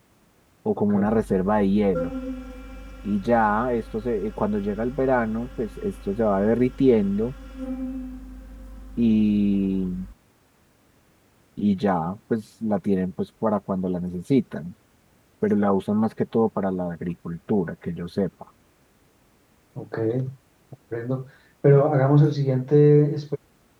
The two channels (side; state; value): both; identical; correlation 1.00